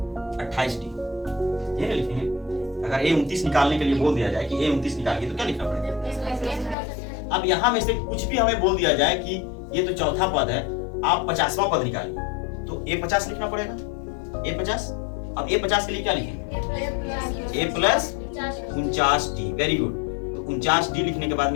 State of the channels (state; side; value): drops out; right; at 6.8 s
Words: 28d, ये लिखेंगे। अगर A29 निकालने के लिए बोल दिया जाए कि A29 निकालिए, तो क्या लिखना पड़ेगा। अब यहां में से कुछ भी हमें बोल दिया जाए कि ये तो चौथा पद है, आप 50वां पद निकालिए, तो A50 लिखना पड़ेगा, A50। अब A50 के लिए क्या लिखेंगे, a plus 49d। Very good. तो 49d लिखने के बाद